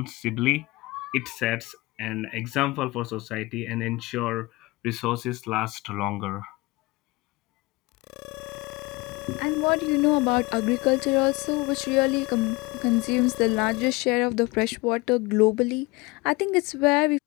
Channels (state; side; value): quieter; right; 23.3 dB